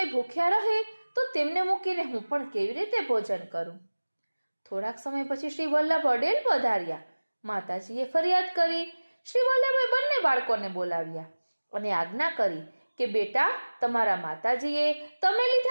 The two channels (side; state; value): both; inverted; correlation -1.00